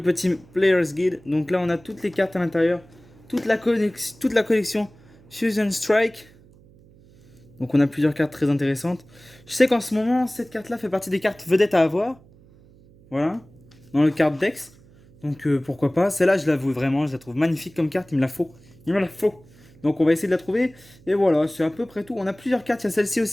Player's Guide. Donc là, on a toutes les cartes à l'intérieur. Toute la collection Fusion Strike. Donc on a plusieurs cartes très intéressantes. Je sais qu'en ce moment, cette carte-là fait partie des cartes vedettes à avoir. Voilà. Dans le card Dex. Donc pourquoi pas. Celle-là, je l'avoue vraiment, je la trouve magnifique comme carte. Il me la faut. Il me la faut. Donc on va essayer de la trouver. Et voilà, c'est à peu près tout. On a plusieurs cartes. Il y a celle-ci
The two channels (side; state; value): right; noise; hum, 26 dB below the sound